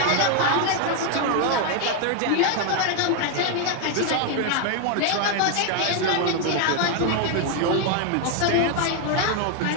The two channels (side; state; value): both; different; correlation 0.01